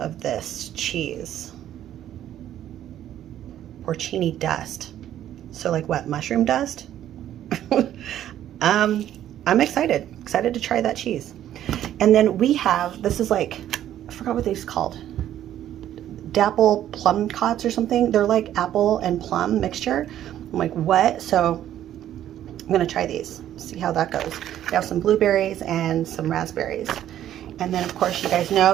this cheese. Porcini dust. So like what, mushroom dust? I'm excited to try that cheese. And then we have, this is like, I forgot what these called. Dapple plum cots or something. They're like apple and plum mixture. I'm like, what? So I'm gonna try these, see how that goes. We have some blueberries and some raspberries. And then of course you guys know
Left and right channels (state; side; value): quieter; left; 11.6 dB